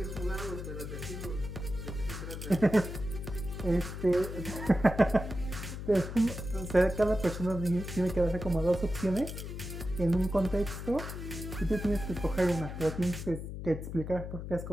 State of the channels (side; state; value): left; noise; hum, 7 dB below the sound